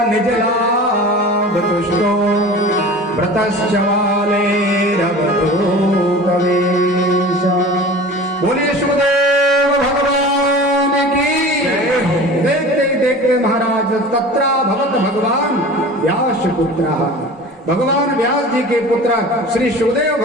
निजलाभ तुष्टो व्रतश्चवालेरवधूतवेश। बोलिए सुखदेव भगवान की। देखते ही देखते महाराज तत्रा भवत भगवान व्यास पुत्र, भगवान व्यास जी के पुत्र श्री सुखदेव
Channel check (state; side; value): normal; both; correlation 0.38